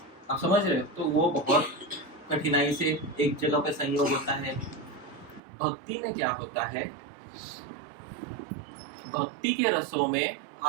आप समझ रहे हो? तो वो बहुत कठिनाई से एक जगह पे संयोग होता है। भक्ति में क्या होता है? भक्ति के रसों में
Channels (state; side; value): drops out; left; at 5.4 s